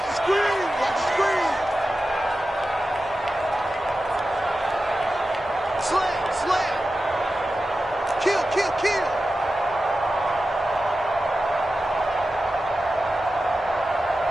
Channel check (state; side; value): normal; both; correlation 0.93